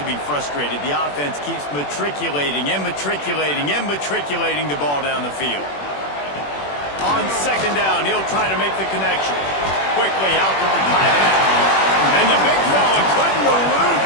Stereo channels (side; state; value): right; late; 21 ms